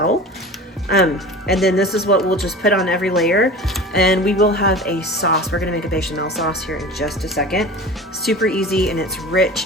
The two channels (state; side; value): normal; both; correlation 0.35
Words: And then this is what we'll just put on every layer, and we will have a sauce. We're gonna make a bechamel sauce here in just a second. Super easy, and it's